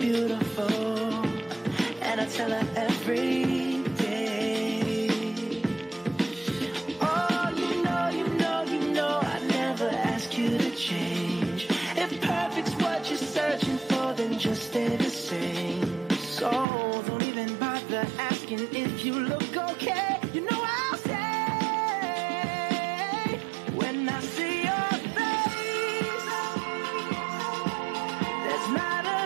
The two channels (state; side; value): drops out; left; at 16.7 s